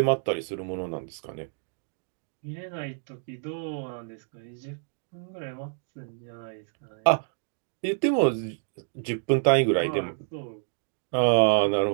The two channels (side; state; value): left; silent; digital silence